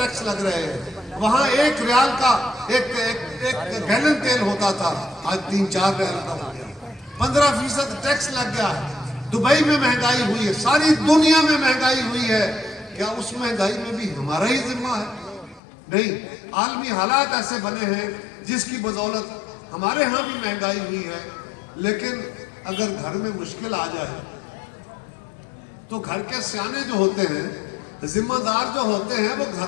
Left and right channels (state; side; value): drops out; right; at 15.6 s